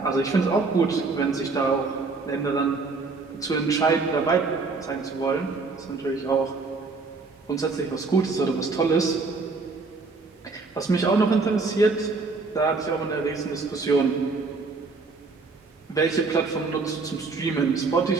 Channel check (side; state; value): left; quieter; 4.1 dB